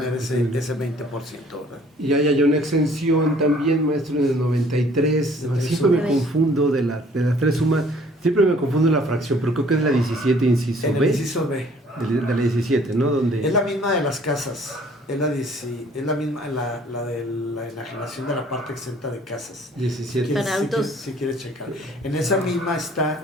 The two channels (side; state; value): both; normal; correlation 0.56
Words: ese 20%, ¿verdad? Y hay una exención también, maestro, en el 93, siempre me confundo de las 3 sumas. Siempre me confundo la fracción, pero creo que es la 17, inciso B. En el inciso B. De la 17, ¿no? Donde... Es la misma de las casas. Es la misma, la de la enajenación de la parte exenta de casas. 17. Para autos. Si quieres checar. En esa misma